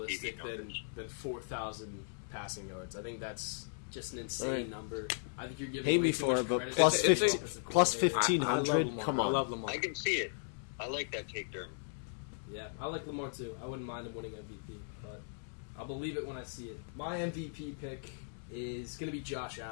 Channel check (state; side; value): silent; right; digital silence